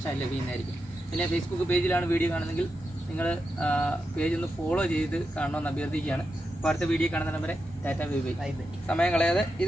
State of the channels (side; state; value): both; normal; correlation 0.88